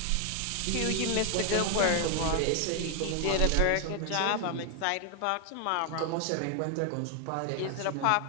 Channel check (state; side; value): different; both; correlation 0.00